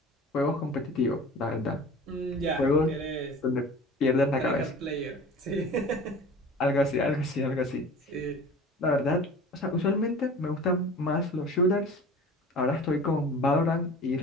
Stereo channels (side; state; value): both; normal; correlation 0.40